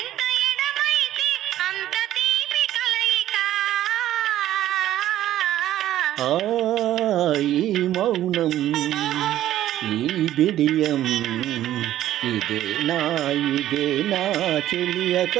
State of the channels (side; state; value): left; quieter; 13.0 dB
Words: ఈ మౌనం ఈ బిడియం ఇదే నా చెలియ